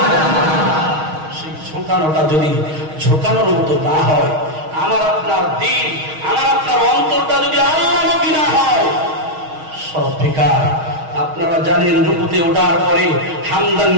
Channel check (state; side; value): late; left; 6.4 ms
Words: সেই ঝোঁকানোটা যদি ঝোঁকানোর মতো না হয়, আমার আপনার দিন, আমার আপনার অন্তরটা যদি আল্লাহমুখী না হয়, সব বেকার। আপনারা জানেন রুকুতে ওঠার পরে হামদান